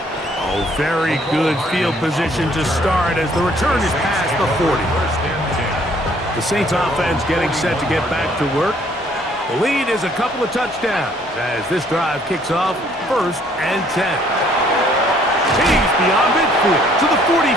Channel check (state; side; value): normal; both; correlation 0.62